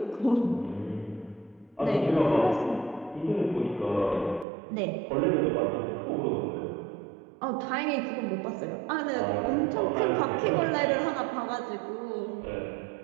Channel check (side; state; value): left; drops out; at 4.5 s